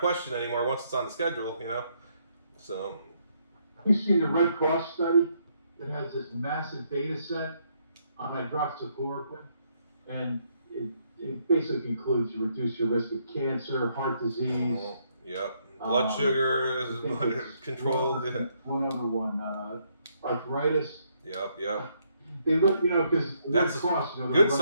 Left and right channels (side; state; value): both; inverted; correlation -0.73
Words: anymore once it's on the schedule, So. You've seen the Red Cross study that has this massive data set on hydroxychloroquine, and it basically concludes you reduce your risk of cancer, heart disease. Yep. Blood sugar is controlled. One other one, arthritis. Yep. They look, because that's Red Cross, good